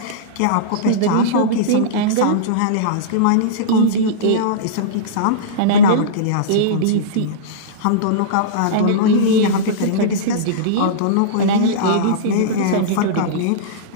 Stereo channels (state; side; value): different; both; correlation -0.04